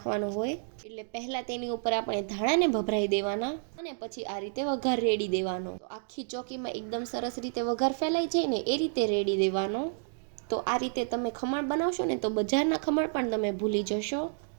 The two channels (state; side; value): silent; left; digital silence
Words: હોય. એટલે પહેલાં તેની ઉપર આપણે ધાણાને ભભરાઈ દેવાના અને પછી આ રીતે વઘાર રેડી દેવાનો. તો આખી ચોકીમાં એકદમ સરસ રીતે વઘાર ફેલાઈ જાય ને એ રીતે રેડી દેવાનો. તો આ રીતે તમે ખમણ બનાવશો ને તો બજારના ખમણ પણ તમે ભૂલી જશો.